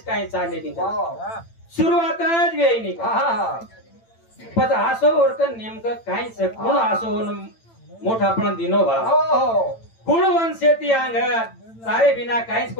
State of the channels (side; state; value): right; late; 8.9 ms